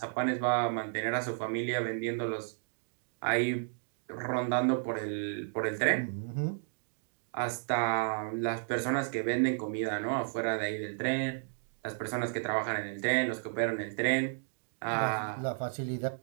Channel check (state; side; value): silent; left; digital silence